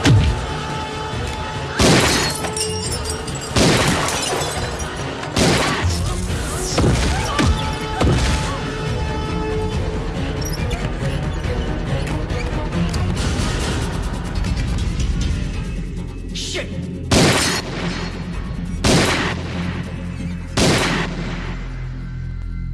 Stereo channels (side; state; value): both; identical; correlation 1.00